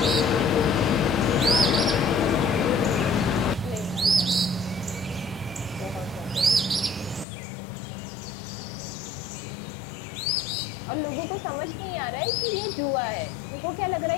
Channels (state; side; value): drops out; right; at 7.2 s